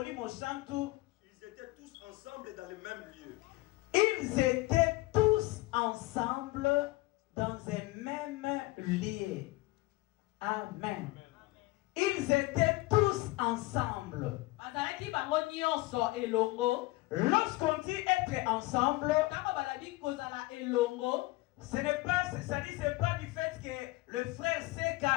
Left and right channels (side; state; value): right; quieter; 20.6 dB